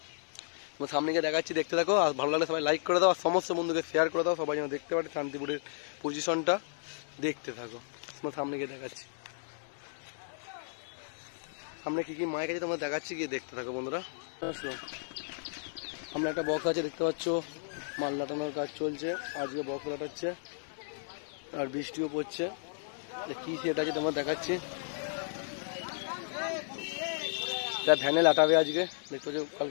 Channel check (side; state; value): right; silent; digital silence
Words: তোমার সামনে গিয়ে দেখাচ্ছি, দেখতে থাকো। আর ভালো লাগলে সবাই লাইক করে দাও, আর সমস্ত বন্ধুকে শেয়ার করে দাও, সবাই যেন দেখতে পারে শান্তিপুরের পজিশনটা। দেখতে থাকো, তোমার সামনে গিয়ে দেখাচ্ছি সামনে কী কী মাইক আছে তোমার দেখাচ্ছি, গিয়ে দেখতে থাকো বন্ধুরা। সামনে একটা বক্স আছে, দেখতে পাচ্ছ, মাল লাটানোর কাজ চলছে। আজকে বক্স লাটাচ্ছে, আর বৃষ্টিও পড়ছে। কী সেট আছে তোমার দেখাচ্ছি। এটা ভ্যানে লাটাবে আজকে, দেখতে পাচ্ছ,